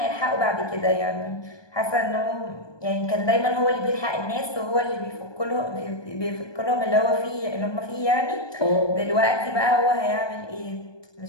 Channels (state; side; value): late; right; 1.2 ms